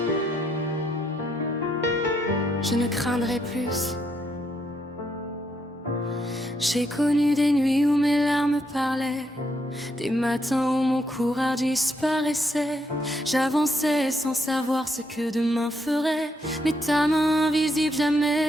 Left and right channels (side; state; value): both; normal; correlation 0.76